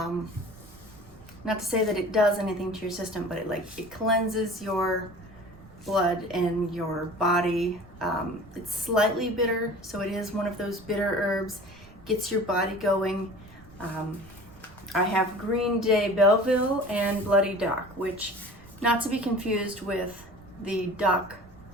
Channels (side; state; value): right; noise; rumble, 23 dB below the sound